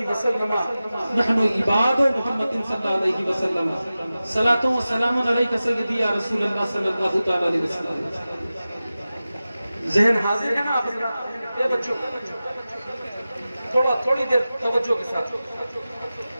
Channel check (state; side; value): inverted; both; correlation -0.95